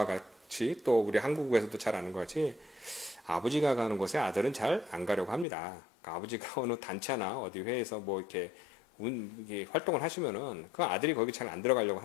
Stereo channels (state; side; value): drops out; right; at 5.5 s